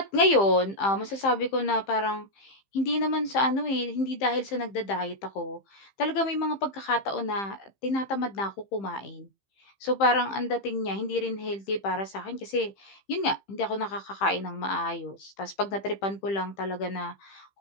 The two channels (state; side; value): late; right; 15 ms